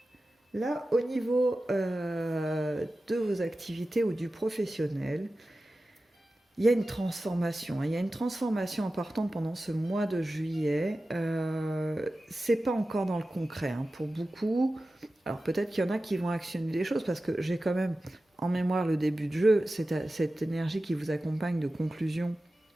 là, au niveau de vos activités ou du professionnel, il y a une transformation. Il y a une transformation importante pendant ce mois de juillet. C'est pas encore dans le concret hein, pour beaucoup. Alors peut-être qu'il y en a qui vont actionner des choses parce que j'ai quand même en mémoire le début de jeu, cette énergie qui vous accompagne de conclusion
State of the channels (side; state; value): both; normal; correlation 0.95